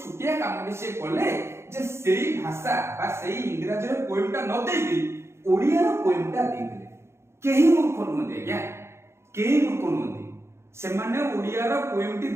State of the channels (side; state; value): left; late; 0.13 ms